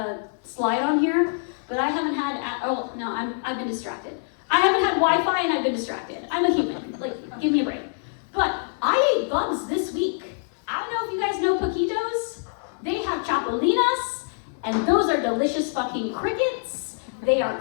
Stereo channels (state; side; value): silent; right; digital silence